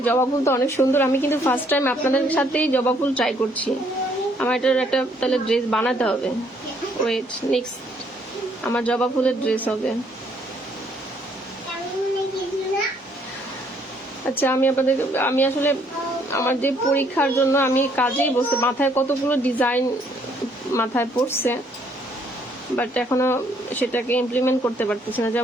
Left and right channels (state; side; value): normal; both; correlation 0.67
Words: জবা ফুল তো অনেক সুন্দর, আমি কিন্তু ফার্স্ট টাইম আপনাদের সাথেই জবা ফুল ট্রাই করছি। আমার এটার একটা তাহলে ড্রেস বানাতে হবে। ওয়েট, নেক্সট আমার জবা ফুলের ড্রেস হবে। আচ্ছা, আমি আসলে আমার যে পরীক্ষার জন্য আমি কাজেই বসে, মাথায় কতগুলো ডিজাইন মাথায় পড়ছে, বাট এখনো সেটাকে ইমপ্লিমেন্ট করতে পারতেছি না।